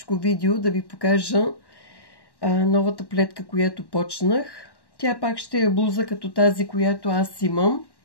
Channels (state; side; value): late; right; 1.1 ms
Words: видео да ви покажа новата плетка, която почнах. Тя пак ще е блуза като тази, която аз имам